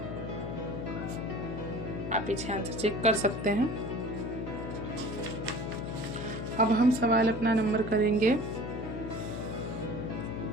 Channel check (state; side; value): noise; left; hum, 6 dB below the sound